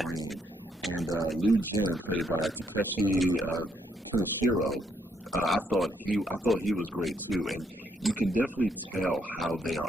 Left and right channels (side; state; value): both; normal; correlation 0.74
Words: And Liu Jin, played by Takeshi Kaneshiro, I thought he was great too. And you can definitely tell how they